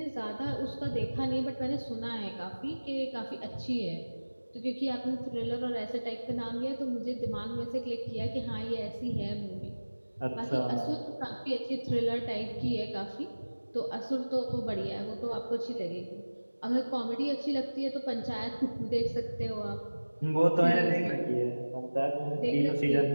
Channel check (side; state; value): both; inverted; correlation -1.00